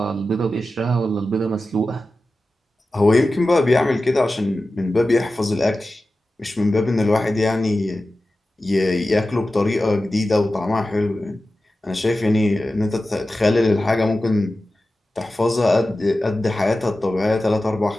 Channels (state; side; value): normal; both; correlation 0.94